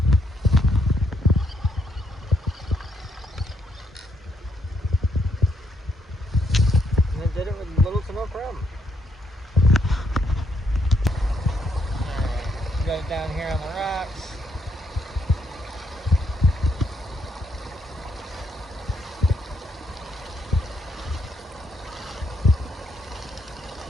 And I did it with little to no problem. Got it down here on the rocks.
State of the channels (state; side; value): normal; both; correlation 0.75